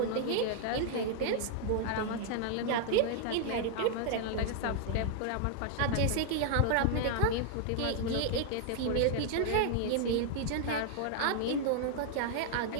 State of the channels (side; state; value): both; different; correlation 0.00